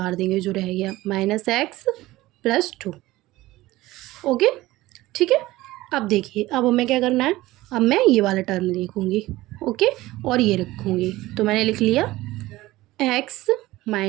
देंगे, जो रह गया -x प्लस 2। ओके, ठीक है। अब देखिए अब हमें क्या करना है, अब मैं ये वाला टर्म लिखूँगी। ओके, और ये रखूँगी। तो मैंने लिख लिया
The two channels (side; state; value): left; quieter; 17.9 dB